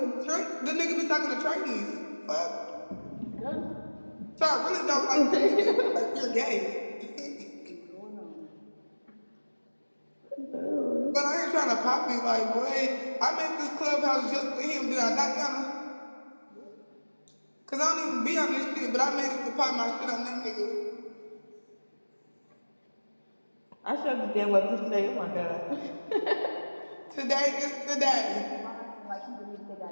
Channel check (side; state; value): both; inverted; correlation -1.00